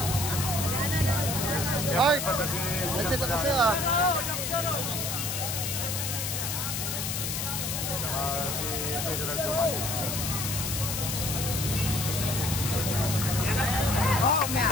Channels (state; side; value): noise; left; hiss, 2 dB below the sound